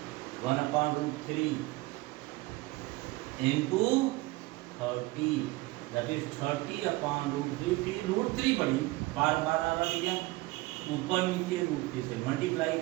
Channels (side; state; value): left; quieter; 20.8 dB